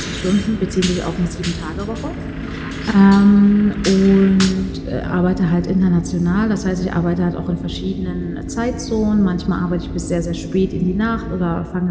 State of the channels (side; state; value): both; identical; correlation 1.00